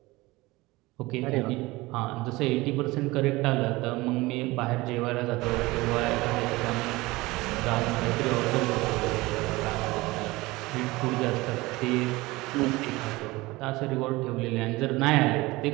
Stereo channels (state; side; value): quieter; left; 21.1 dB